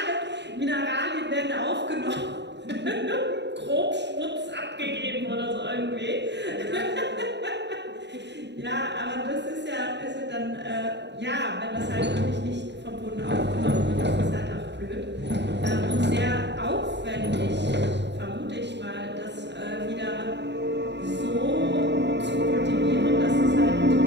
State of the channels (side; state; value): left; late; 0.51 ms